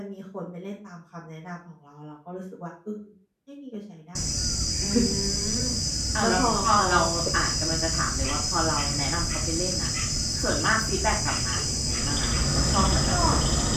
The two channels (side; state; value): both; identical; correlation 1.00